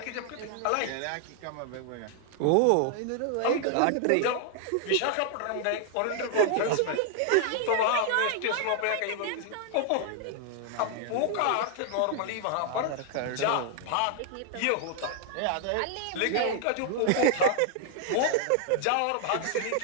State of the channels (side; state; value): both; different; correlation 0.00